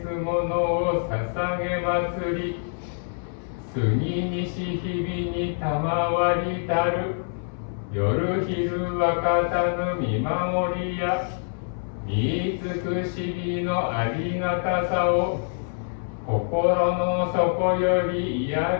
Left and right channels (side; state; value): right; silent; 61 dB below the other